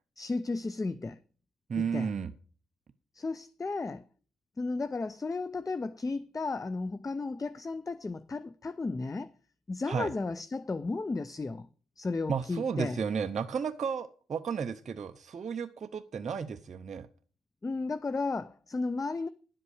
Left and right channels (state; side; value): normal; both; correlation 0.83